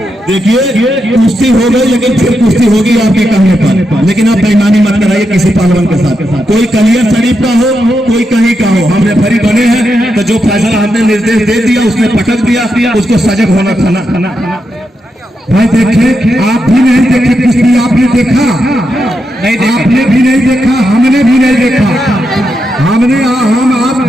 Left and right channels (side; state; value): both; normal; correlation 0.85